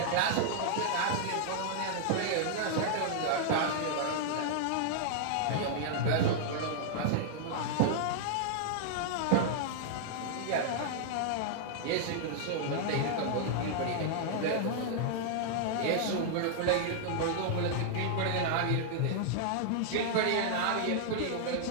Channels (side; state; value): both; different; correlation -0.01